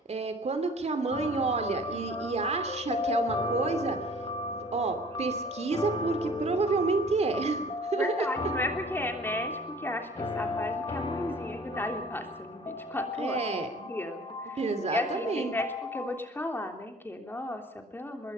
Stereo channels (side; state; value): both; normal; correlation 0.49